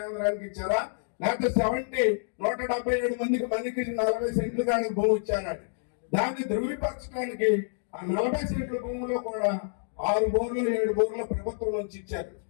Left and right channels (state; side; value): silent; right; digital silence